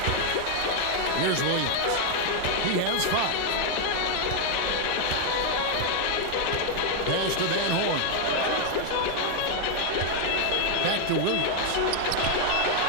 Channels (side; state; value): both; different; correlation 0.00